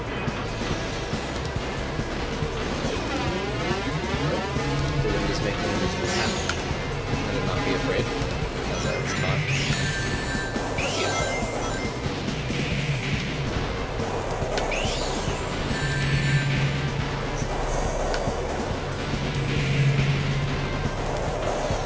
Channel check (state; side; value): identical; both; correlation 1.00